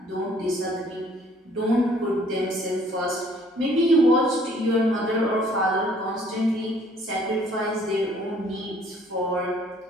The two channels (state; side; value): normal; both; correlation 0.59